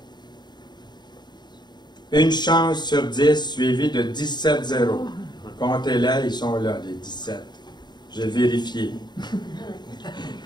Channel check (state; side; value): late; right; 0.21 ms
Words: Une chance sur 10 suivi de 17 zéros. Comptez-les, ils sont là, les 17. J'ai vérifié.